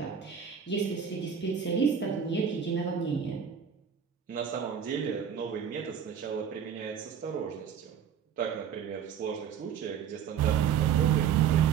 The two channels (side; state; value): left; quieter; 7.9 dB